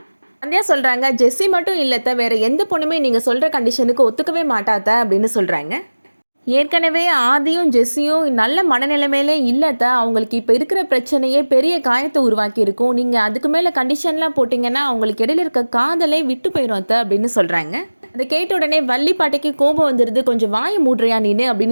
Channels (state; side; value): inverted; both; correlation -1.00